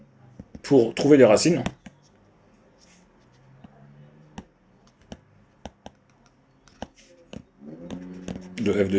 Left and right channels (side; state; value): both; identical; correlation 1.00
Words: pour trouver les racines de f de